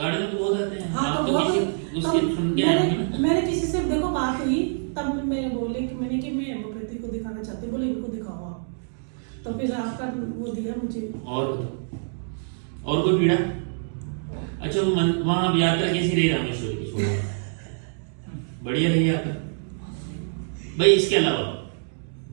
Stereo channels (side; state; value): left; silent; digital silence